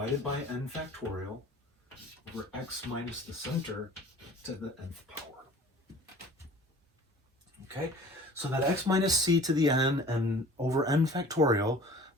by n factorial over x minus the center to the nth power. Okay? So that x minus c to the n and over n factorial,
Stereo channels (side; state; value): both; normal; correlation 0.46